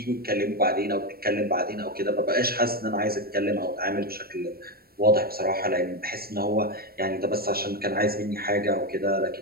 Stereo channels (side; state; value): left; late; 0.44 ms